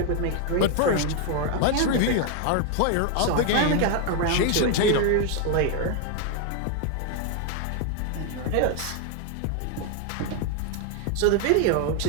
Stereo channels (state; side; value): different; both; correlation 0.01